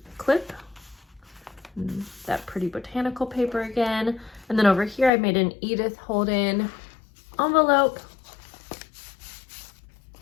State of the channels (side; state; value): right; drops out; at 5.1 s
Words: clip, that pretty botanical paper again. And then over here I made an Edith Holden envelope,